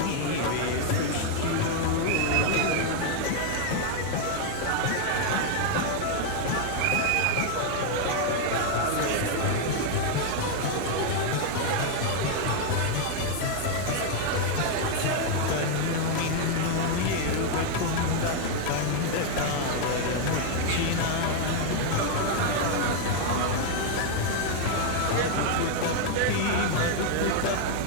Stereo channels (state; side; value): different; both; correlation 0.00